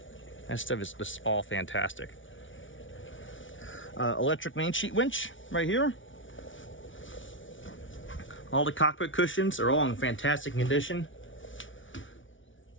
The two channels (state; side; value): late; right; 0.56 ms